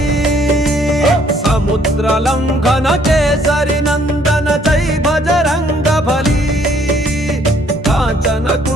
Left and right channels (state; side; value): normal; both; correlation 0.64